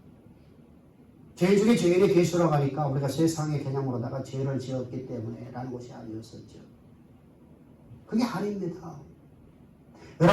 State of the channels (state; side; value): identical; both; correlation 1.00